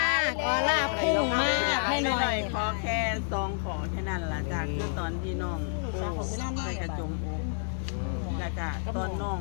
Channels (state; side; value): silent; right; digital silence